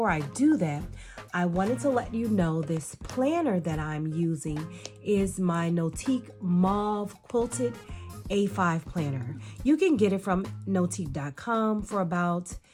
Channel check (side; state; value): both; identical; correlation 1.00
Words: I do that, I wanted to let you know this planner that I'm using is my NOTIQ Mauve Quilted A5 planner. You can get it from notiq.com for about